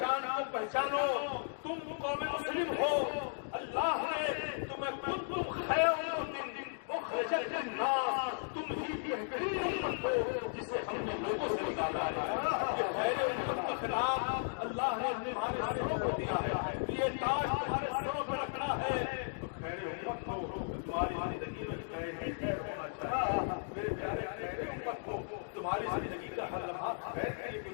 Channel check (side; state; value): right; silent; digital silence